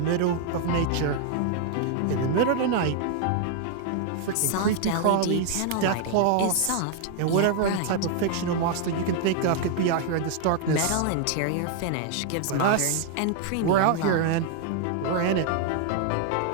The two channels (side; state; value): both; different; correlation 0.00